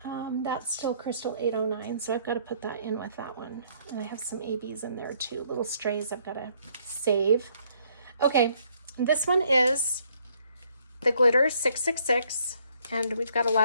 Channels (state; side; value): inverted; both; correlation -0.66